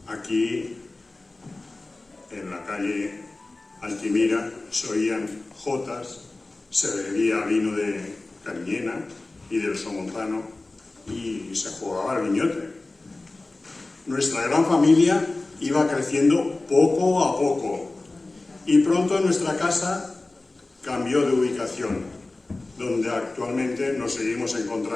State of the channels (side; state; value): right; quieter; 3.1 dB